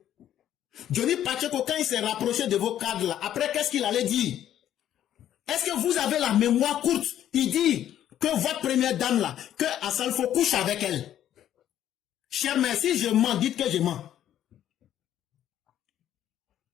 Johnny Pacheco, quand il s'est rapproché de vos cadres là, après qu'est-ce qu'il allait dire? Est-ce que vous avez la mémoire courte? Il dit que votre première dame là, que Assalfo couche avec elle. Cher mère, si je mens, dites que je mens.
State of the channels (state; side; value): quieter; right; 11.2 dB